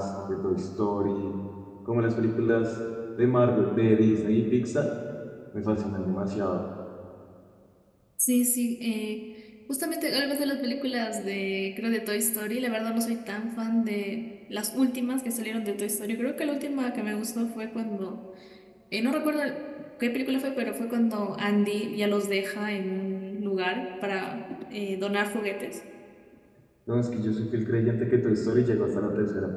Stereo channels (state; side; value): identical; both; correlation 1.00